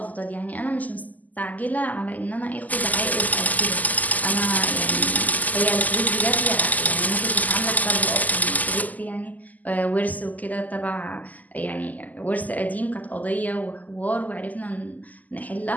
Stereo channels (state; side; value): late; right; 0.080 ms